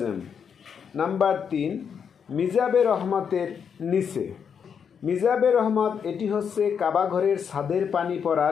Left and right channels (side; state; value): right; quieter; 7.1 dB